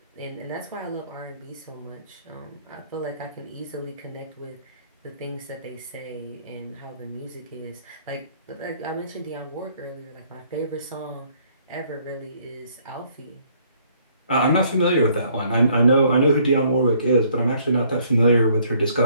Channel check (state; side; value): inverted; both; correlation -0.63